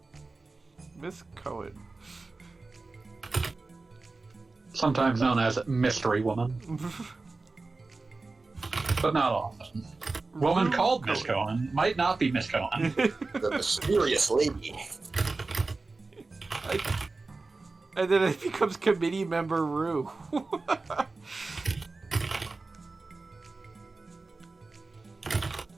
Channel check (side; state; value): left; quieter; 3.6 dB